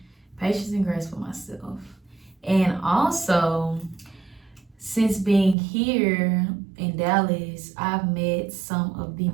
Patience and grace for myself. And also, since being here in Dallas, I've met some of the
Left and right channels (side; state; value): left; drops out; at 5.6 s